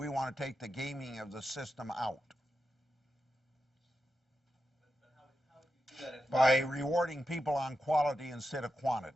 want to take the gaming of the system out. But how would you do that if By rewarding people on quality instead of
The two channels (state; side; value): normal; both; correlation 0.89